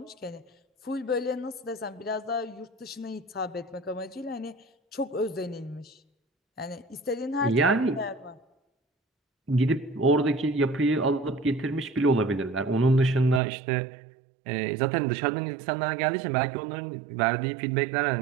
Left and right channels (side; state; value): left; drops out; at 13.4 s